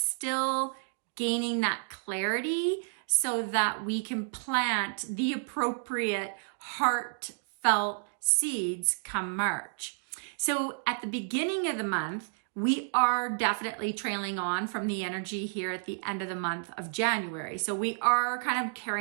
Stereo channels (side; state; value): left; silent; digital silence